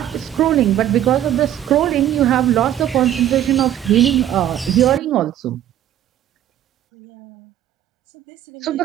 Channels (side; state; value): left; quieter; 11.7 dB